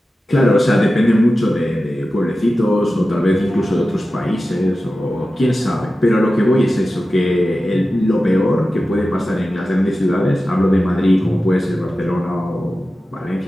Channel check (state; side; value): normal; both; correlation 0.94